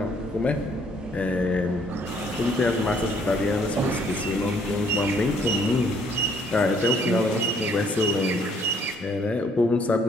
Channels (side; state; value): both; normal; correlation 0.64